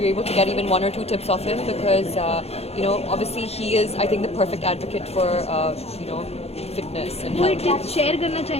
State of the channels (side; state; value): right; late; 0.30 ms